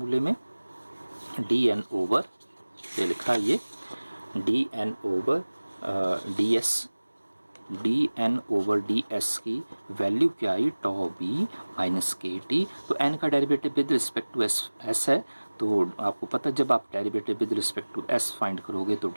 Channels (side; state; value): both; inverted; correlation -1.00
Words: में, डी एन ओवर, ये लिखा है ये D N over D S की वैल्यू क्या आई, tau B minus K T. तो एन का derivative with respect to S है, तो आपको पता है जब आप derivative with respect to S find करोगे तो